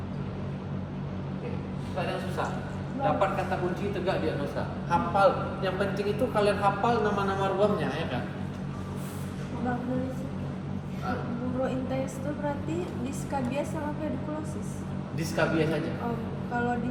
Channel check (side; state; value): both; identical; correlation 1.00